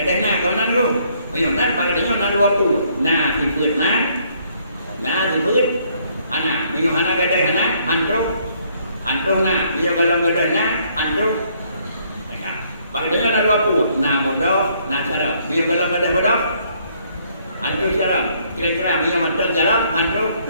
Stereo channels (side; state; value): both; inverted; correlation -0.67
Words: kau tu meyonan bak dengan dua puluh dibut dibut ana meyohana hana Antro dia kalau gedenya antro. Bagainya ada apa? Bodoh, cara. Dia kalau ada bodoh, antro cara. Kira-kira dia mantel cara antro.